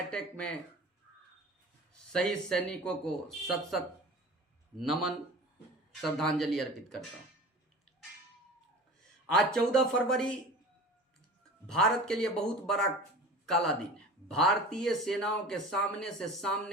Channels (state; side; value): normal; both; correlation 0.38